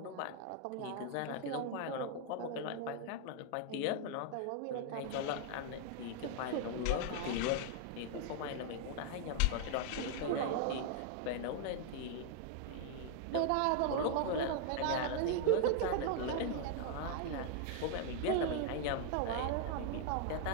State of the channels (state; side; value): different; both; correlation 0.00